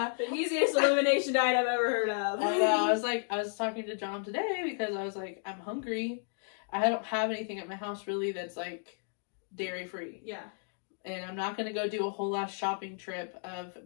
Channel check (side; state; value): right; silent; 56 dB below the other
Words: The easiest elimination diet I've ever heard of. I know. I was talking to John today because I was like, I'm hungry. I don't have anything at my house really that's like dairy free. Yeah. And I'm not gonna go do a whole ass shopping trip of